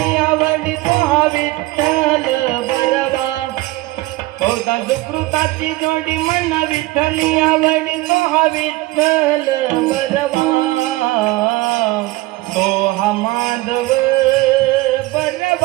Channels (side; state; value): left; quieter; 19.8 dB